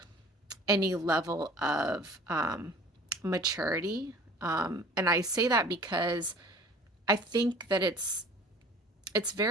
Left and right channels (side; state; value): both; normal; correlation 0.47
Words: any level of maturity And I say that because I think that it's